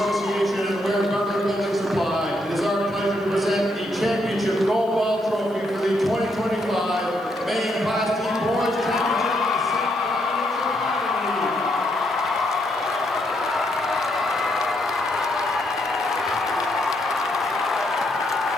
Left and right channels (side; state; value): right; noise; hiss, 27 dB below the sound